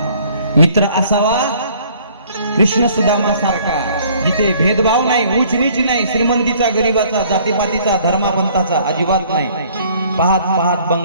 मित्र असावा कृष्ण सुदामा सारखा, जिथे भेदभाव नाही, उच नीच नाही, श्रीमंतीचा गरीबाचा, जातीपातीचा, धर्मापंथाचा अजिबात नाही. पाहत पाहत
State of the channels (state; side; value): inverted; both; correlation -0.57